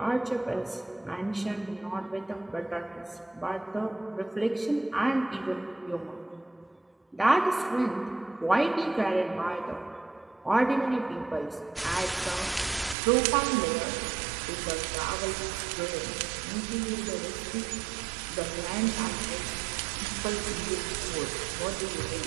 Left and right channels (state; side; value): drops out; left; at 13.0 s